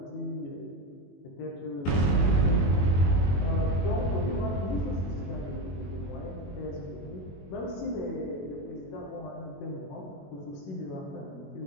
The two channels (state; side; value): late; right; 21 ms